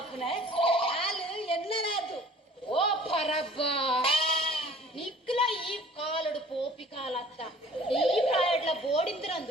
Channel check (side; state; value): both; normal; correlation 0.50